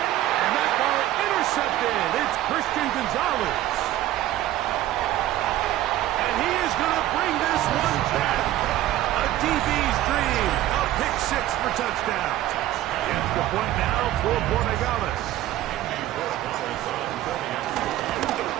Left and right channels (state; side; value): quieter; left; 14.1 dB